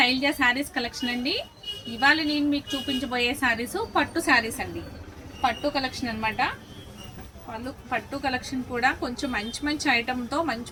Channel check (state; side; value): identical; both; correlation 1.00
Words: sarees collection అండి. ఇవాళ నేను మీకు చూపించబోయే శారీస్ పట్టు శారీస్ అండి. పట్టు కలెక్షన్ అనమాట. పట్టు కలెక్షన్ కూడా కొంచెం మంచి మంచి ఐటమ్తో